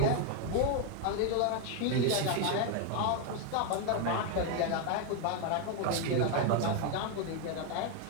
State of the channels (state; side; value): different; both; correlation 0.01